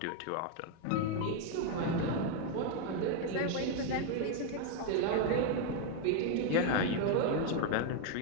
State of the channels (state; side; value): different; both; correlation 0.01